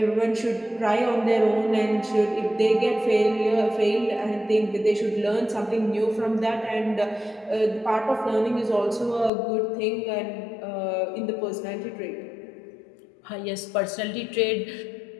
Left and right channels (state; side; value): drops out; right; at 9.3 s